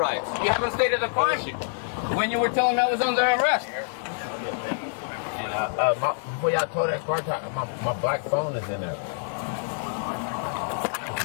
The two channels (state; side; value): silent; right; 61 dB below the other